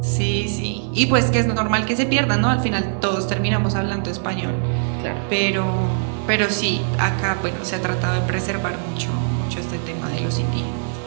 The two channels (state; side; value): silent; left; digital silence